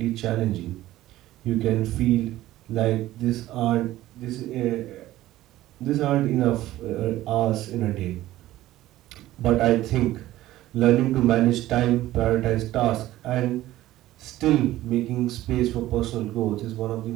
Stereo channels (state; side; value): quieter; left; 15.3 dB